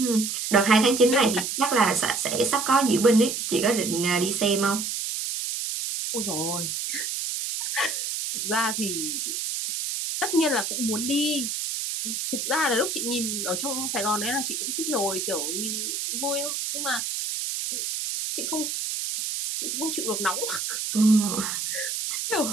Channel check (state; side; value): noise; right; hiss, 3 dB below the sound